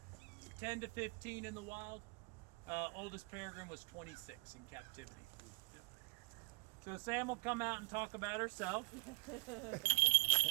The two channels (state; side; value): quieter; left; 28.9 dB